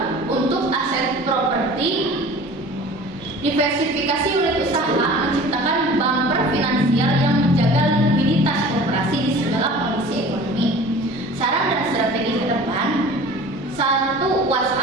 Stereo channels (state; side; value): normal; both; correlation 0.43